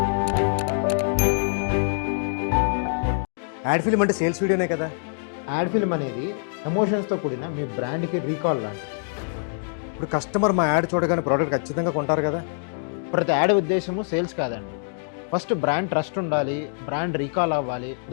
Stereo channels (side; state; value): right; silent; digital silence